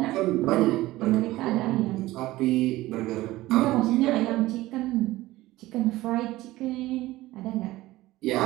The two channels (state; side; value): quieter; left; 17.5 dB